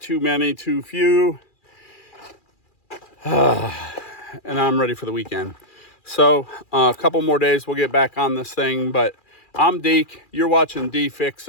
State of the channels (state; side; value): late; right; 2.4 ms